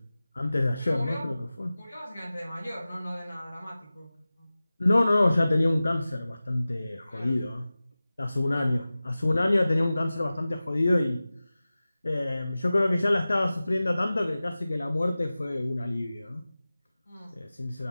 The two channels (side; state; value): both; inverted; correlation -0.97